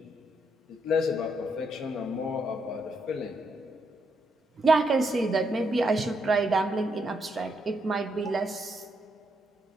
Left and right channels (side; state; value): both; normal; correlation 0.78